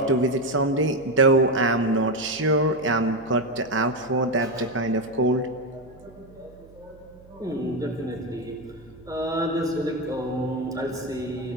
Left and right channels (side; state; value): right; noise; hum, 24 dB below the sound